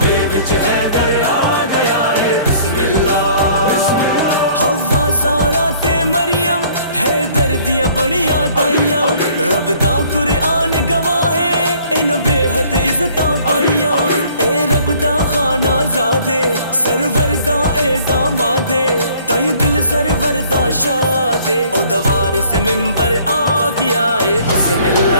وچ حیدر آ گیا ہے بسم اللہ حوا سارا تے مریم حیدر دیاں بڑیاں دائیاں رب دا قرآن گواہ ہے ان بے حد عزتاں پائیاں اے رب دا خانہ زادے سرور دا اے دامادے تائیں دل سرور دا شادے او دوار سے ممبر آ گیا ہے بسم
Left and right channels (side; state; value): both; inverted; correlation -0.56